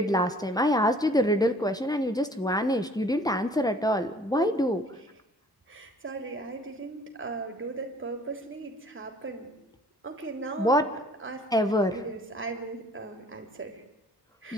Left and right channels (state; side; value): normal; both; correlation 0.54